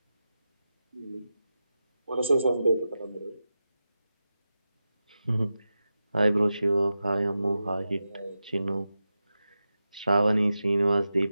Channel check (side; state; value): both; inverted; correlation -0.91